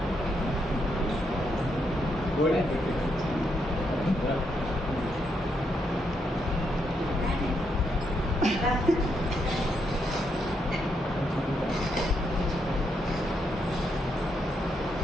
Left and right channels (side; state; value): both; normal; correlation 0.79